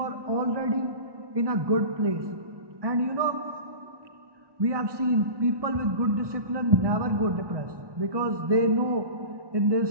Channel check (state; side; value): late; left; 1.2 ms